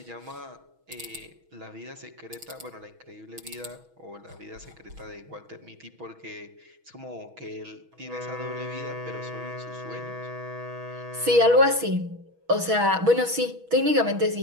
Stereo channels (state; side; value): late; left; 6.2 ms